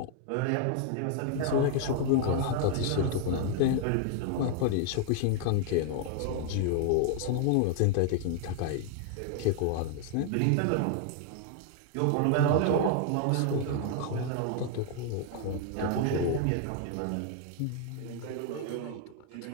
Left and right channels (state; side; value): different; both; correlation 0.00